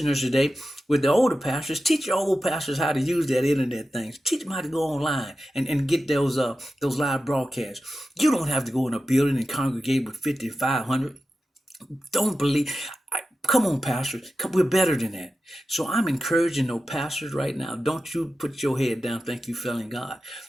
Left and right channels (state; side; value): normal; both; correlation 0.92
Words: today, with the older pastors, teach your old pastors how to use that internet things. Teach them how to go online and get those live broadcasts. You don't have to go in a building and congregate with 5,500. Don't believe. Come on, pastors. We're better than that. So I'm encouraging those pastors right now. Don't you put your head down, think you failing God.